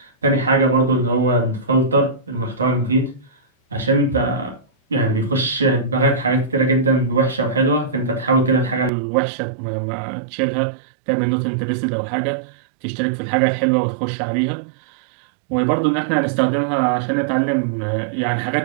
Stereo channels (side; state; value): left; drops out; at 8.9 s